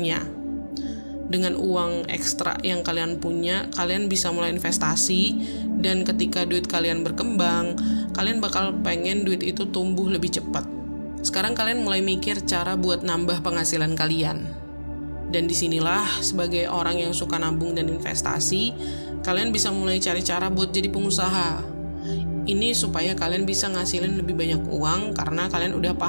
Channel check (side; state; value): both; inverted; correlation -1.00